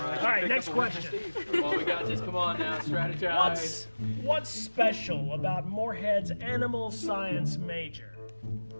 right, next question. Come on, we got this. Come on now, strategize. What's special about Moorhead's animal science major?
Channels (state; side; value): inverted; both; correlation -1.00